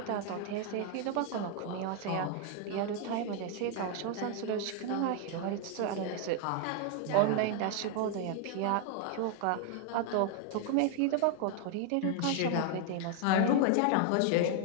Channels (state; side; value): different; both; correlation 0.00